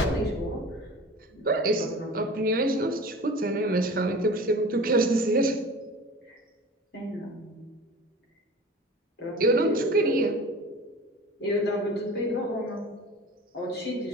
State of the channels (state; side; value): normal; both; correlation 0.38